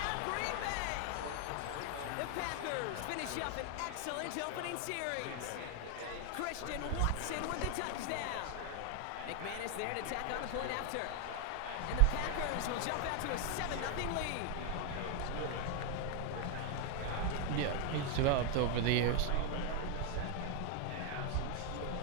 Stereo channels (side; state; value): both; different; correlation 0.00